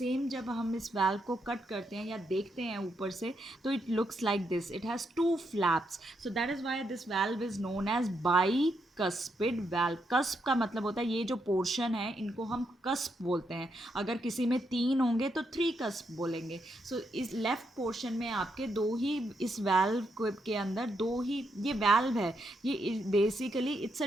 जब हम इस वाल्व को कट करते हैं या देखते हैं ऊपर से, तो it looks like this, it has 2 flaps. So that is why this valve is known as bicuspid valve. Cusp का मतलब होता है ये जो पोर्शन है, इनको हम कस्प बोलते हैं. अगर किसी में 3 होंगे तो 3 कस्प बोलेंगे. सो इस लेफ्ट पोर्शन में आपके 2 ही, इस वाल्व के अंदर 2 ही, ये वाल्व है, ये basically it's a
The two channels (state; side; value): normal; both; correlation 0.80